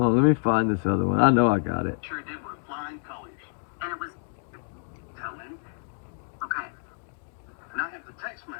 on, let me find this other one. I know I got it. Sure did with flying colors. And it was telling. Okay. And I have the text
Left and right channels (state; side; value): silent; right; digital silence